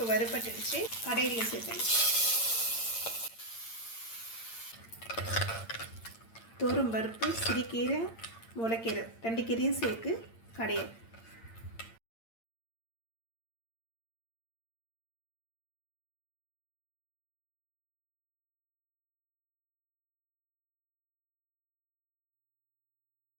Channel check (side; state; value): right; late; 8.8 ms